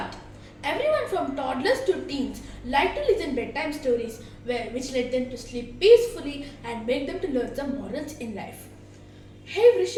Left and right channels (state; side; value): identical; both; correlation 1.00